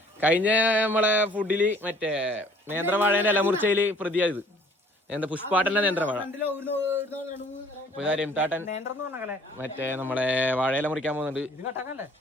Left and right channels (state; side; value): normal; both; correlation 0.55